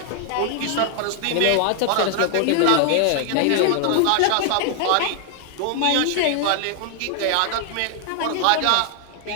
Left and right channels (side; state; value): both; different; correlation 0.00